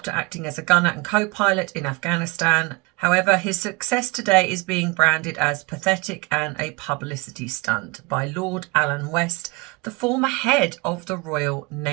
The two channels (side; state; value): left; quieter; 26.4 dB